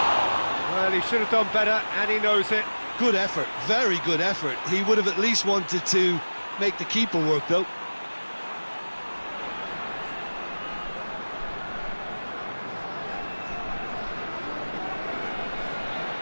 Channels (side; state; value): both; inverted; correlation -1.00